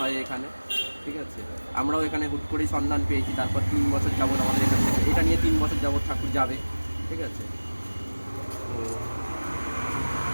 এখানে, ঠিক আছে? আমরাও এখানে হুট করেই সন্ধান পেয়েছি, তারপর 3 বছর যাবত আমাদের এখান থেকে, এটা নিয়ে 3 বছর যাবত ঠাকুর যাবে, ঠিক আছে?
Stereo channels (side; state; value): both; inverted; correlation -1.00